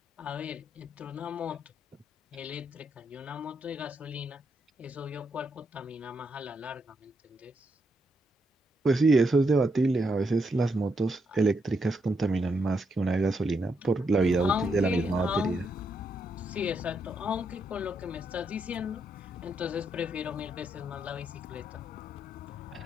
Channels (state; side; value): normal; both; correlation 0.79